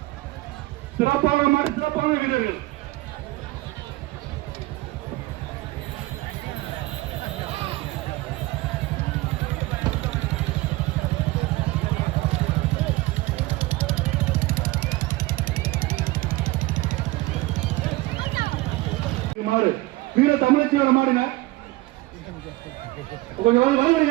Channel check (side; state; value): left; quieter; 19.9 dB